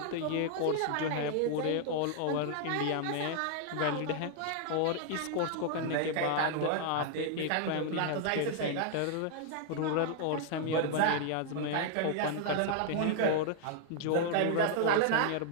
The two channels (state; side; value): different; both; correlation -0.01